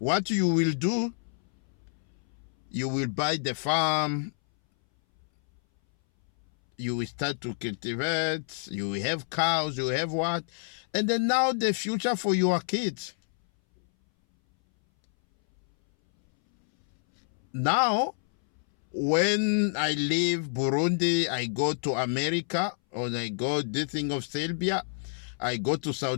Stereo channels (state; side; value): silent; right; 59 dB below the other